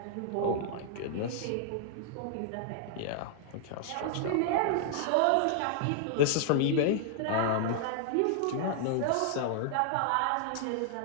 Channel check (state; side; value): different; both; correlation 0.00